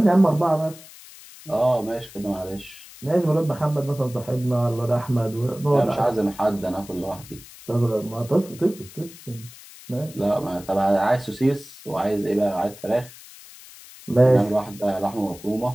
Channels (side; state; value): left; noise; hiss, 19 dB below the sound